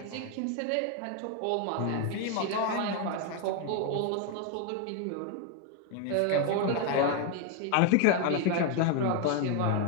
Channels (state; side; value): different; both; correlation 0.01